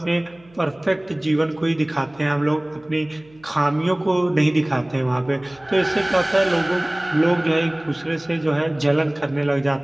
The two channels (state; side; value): noise; right; hum, 28 dB below the sound